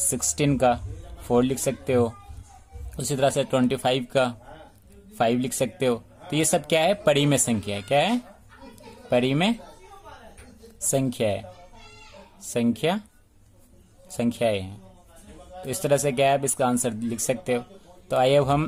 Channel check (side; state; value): both; identical; correlation 1.00